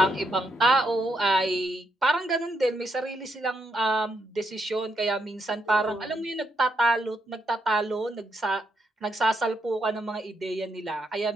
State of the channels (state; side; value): normal; both; correlation 0.79